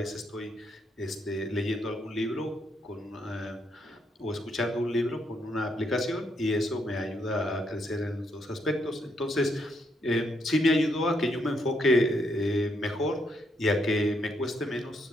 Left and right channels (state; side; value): normal; both; correlation 0.76